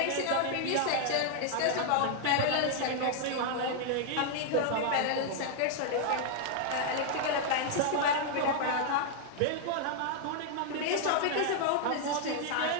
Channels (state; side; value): different; both; correlation -0.01